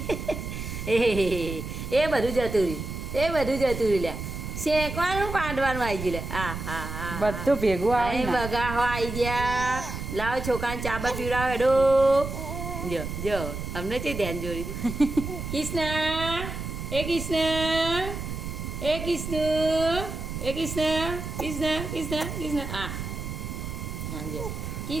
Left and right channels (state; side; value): noise; right; rumble, 6 dB below the sound